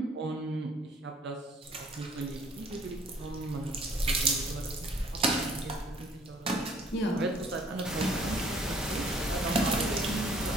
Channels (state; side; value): normal; both; correlation 0.58